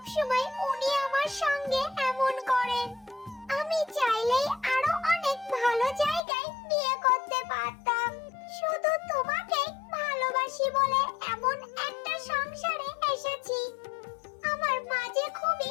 সময় উনি আমার সঙ্গে এমন করেন? আমি চাইলেই আরো অনেক ভালো জায়গায় বিয়ে করতে পারতাম। শুধু তোমাকে ভালোবাসি বলে এমন একটা সংসারে এসেছি। আমার মা যে খুবই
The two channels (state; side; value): drops out; right; at 6.2 s